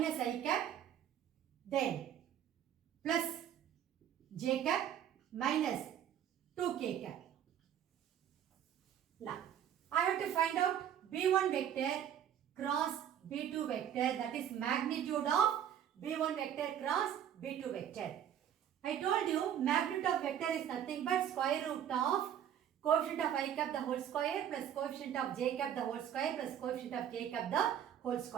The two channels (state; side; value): quieter; left; 9.8 dB